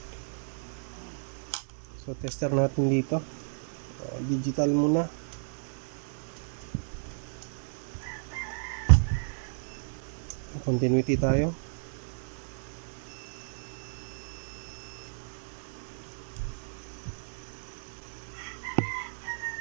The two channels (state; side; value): silent; left; 56 dB below the other